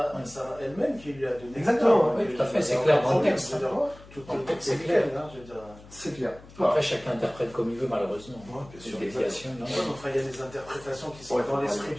elle-même qui lui a donné. Exactement, oui, tout à fait, c'est clair dans le texte. C'est clair. C'est clair. Après, chacun interprète comme il veut, malheureusement. Bien sûr. Il y a des interprétations qui sont dans l'esprit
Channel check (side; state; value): left; noise; hum, 21 dB below the sound